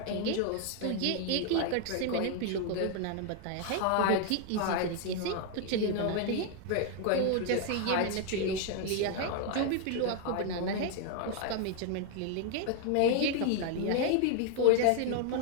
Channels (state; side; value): different; both; correlation 0.01